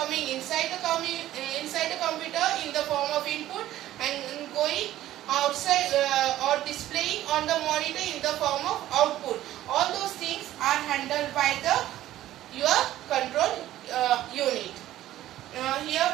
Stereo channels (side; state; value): left; quieter; 13.9 dB